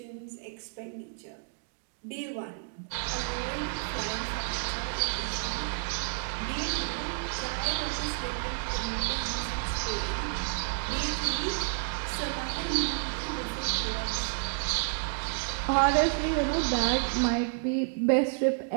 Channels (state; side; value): silent; left; digital silence